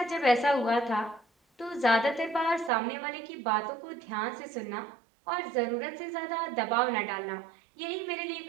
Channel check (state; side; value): drops out; left; at 2.7 s